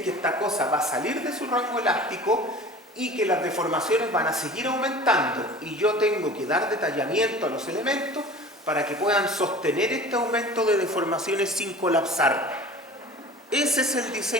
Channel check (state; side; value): normal; both; correlation 0.41